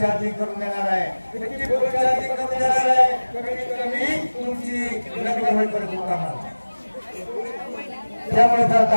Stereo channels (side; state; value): both; inverted; correlation -1.00